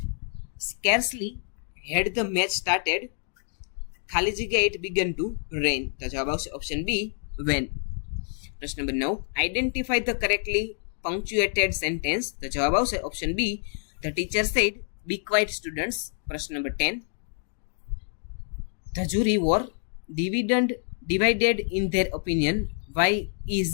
Scarcely had the match started ખાલી જગ્યા ઇટ બિગન ટુ રેઇન. તો જવાબ આવશે ઓપ્શન બી, વેન. પ્રશ્ન નંબર 9. Identify the correctly punctuated sentence. તો જવાબ આવશે option B, the teacher said be quiet students. પ્રશ્ન નંબર 10. The jury were divided in their opinion. Why is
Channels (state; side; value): silent; right; 60 dB below the other